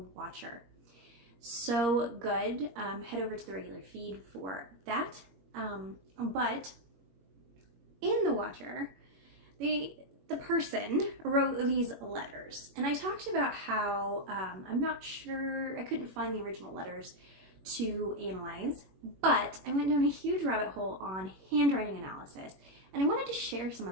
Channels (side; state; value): left; late; 21 ms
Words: So good. Head over to the regular feed for that. But in The Watcher, the person wrote these letters, and I talked about how I'm not sure, I couldn't find the original letters to analyze, but I went down a huge rabbit hole on handwriting analysis, and I wanted to share some